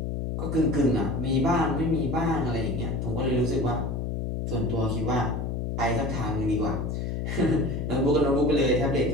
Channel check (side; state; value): left; noise; hum, 2 dB below the sound